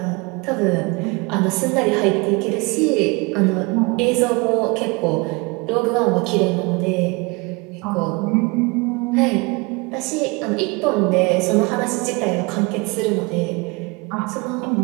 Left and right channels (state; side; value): quieter; left; 27.4 dB